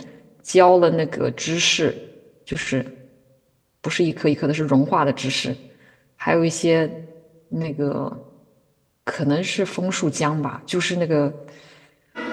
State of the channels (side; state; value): both; identical; correlation 1.00